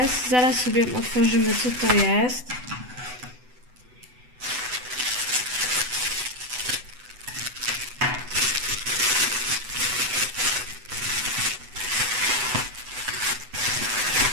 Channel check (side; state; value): left; late; 8.0 ms